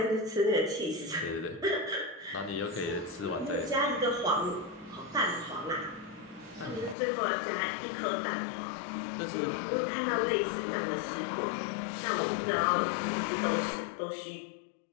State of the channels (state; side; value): drops out; right; at 7.0 s